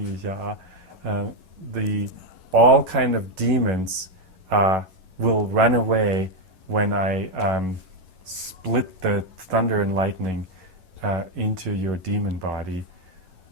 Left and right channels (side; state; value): left; late; 11 ms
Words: 一下啊。The all kind of demons will run away when I split the thunder and lightning into your demon body.